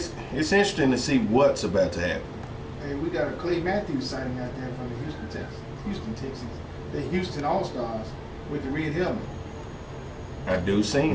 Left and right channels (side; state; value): both; identical; correlation 1.00